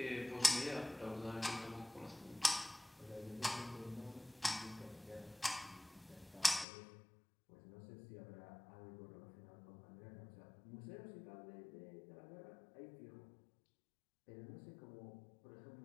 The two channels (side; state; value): right; drops out; at 6.7 s